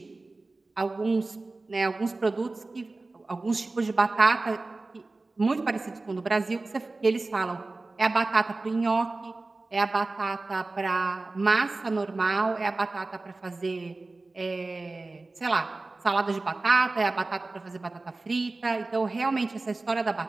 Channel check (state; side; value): quieter; left; 3.3 dB